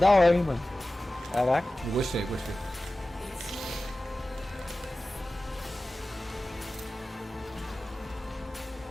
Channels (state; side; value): normal; both; correlation 0.96